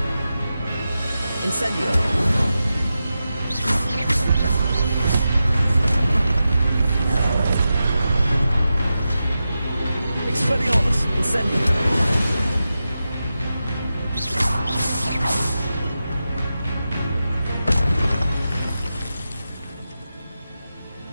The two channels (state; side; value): inverted; both; correlation -0.91